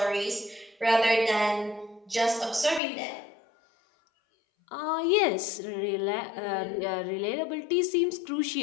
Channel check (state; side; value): drops out; right; at 2.8 s